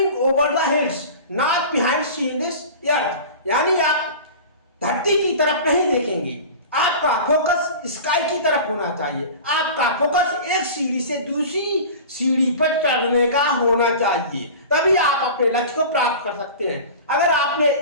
over the hills not behind seeing this earth. यानी आप धरती की तरफ नहीं देखेंगे, आपका फोकस स्काई की तरफ होना चाहिए। आपका फोकस एक सीढ़ी से दूसरी सीढ़ी पर चढ़ने का होना चाहिए, तभी आप अपने लक्ष्य को प्राप्त कर सकते हैं। अगर आपने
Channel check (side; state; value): both; inverted; correlation -0.35